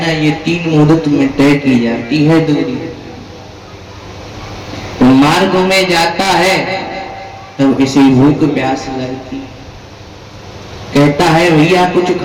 ना, ये 3 मुहूर्त में तय की जाती है दूरी। तो मार्ग में जाता है तब इसे भूख प्यास लगती, कहता है भैया कुछ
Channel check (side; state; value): both; identical; correlation 1.00